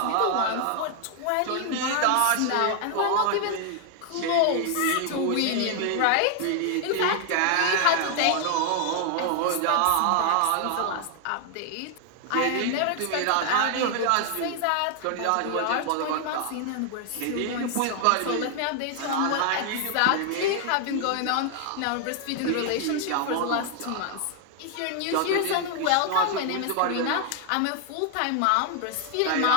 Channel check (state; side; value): different; both; correlation 0.00